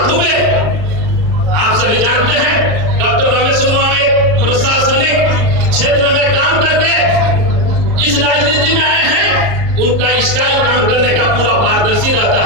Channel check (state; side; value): late; left; 38 ms